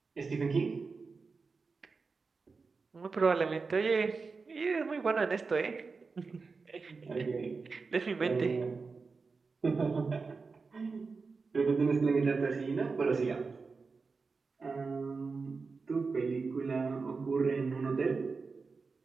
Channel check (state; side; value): quieter; left; 4.5 dB